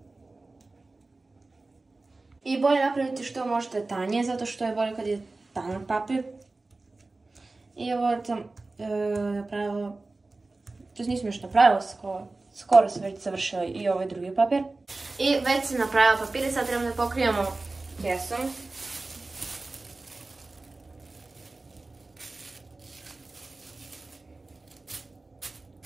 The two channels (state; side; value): quieter; left; 3.3 dB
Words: I bolje napraviti što možete tanje, zato što je bolje kad je tanak papir. I ovo sam napravila, to nisam još napravila, skoro sam već završila i ovaj drugi papir. I već sam napravila papir i sad trebamo da pokrijemo kesom.